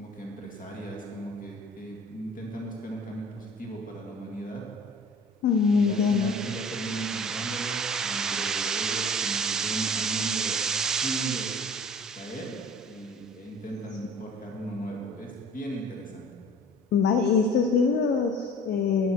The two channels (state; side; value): normal; both; correlation 0.46